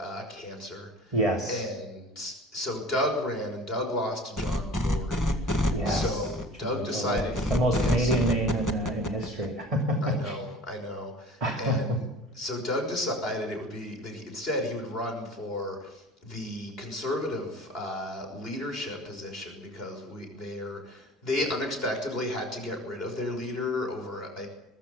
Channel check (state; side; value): normal; both; correlation 0.42